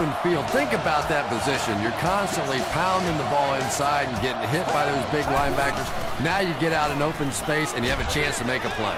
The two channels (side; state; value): both; identical; correlation 1.00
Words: field, think about that position. You're constantly pounding the ball inside and getting hit by those big linebackers. Now you get out in open space and you have a chance to make a play.